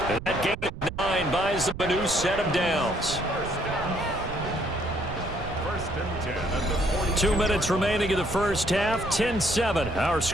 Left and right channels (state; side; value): noise; right; rumble, 10 dB below the sound